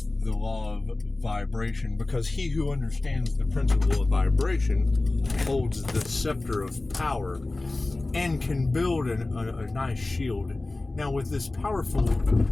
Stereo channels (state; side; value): quieter; right; 3.0 dB